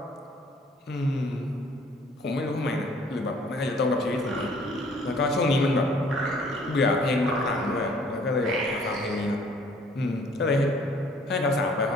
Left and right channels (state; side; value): normal; both; correlation 0.58